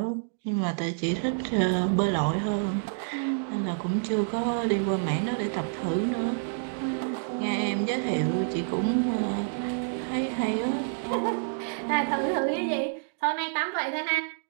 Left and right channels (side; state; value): left; silent; digital silence